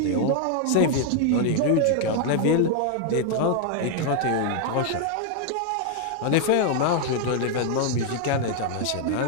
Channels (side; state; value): both; different; correlation 0.00